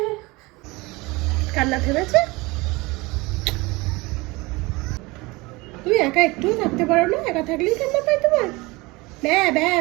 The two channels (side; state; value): left; quieter; 23.4 dB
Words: কান্না থেমেছে? তুমি একা একটুও থাকতে পারো না? একা থাকলেই কান্না পায় তোমার? ব্যা ব্যা